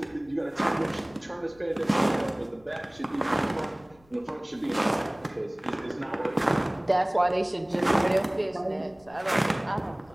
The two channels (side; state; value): left; noise; rumble, 28 dB below the sound